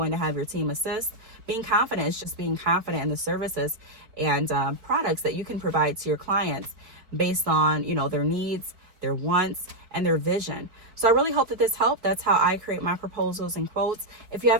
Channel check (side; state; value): left; late; 4.6 ms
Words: to have your team assist. Being confident is just being confident in the services and products that you can provide to your clients based on, you know, their needs, their wants, and their vision. So I really hope that this helped. That's how I create my proposals and quotes. If you